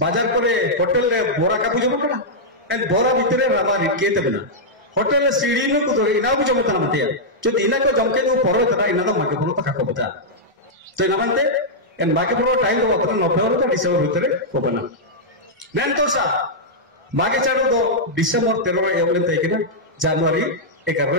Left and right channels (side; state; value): both; normal; correlation -0.08